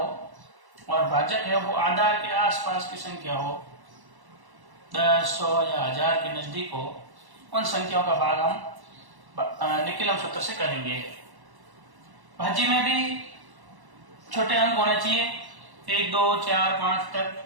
और भाजक है वो आधार के आसपास की संख्या हो, 10, 100 या 1000 के नजदीक हो, उन संख्याओं का भाग हम निकिलम सूत्र से करेंगे। भाज्य में भी छोटे अंक होने चाहिए, 1, 2, 4, 5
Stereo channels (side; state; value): left; late; 1.1 ms